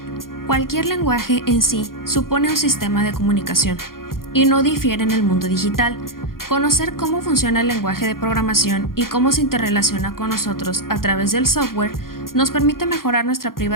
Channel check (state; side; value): late; right; 0.92 ms